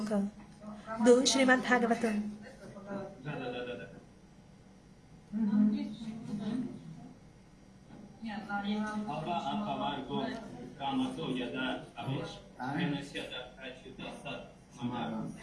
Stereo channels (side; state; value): both; identical; correlation 1.00